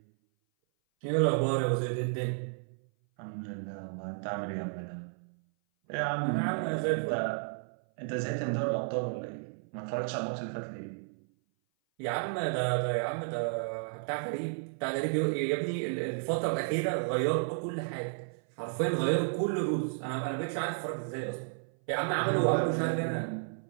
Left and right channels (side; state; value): left; silent; 56 dB below the other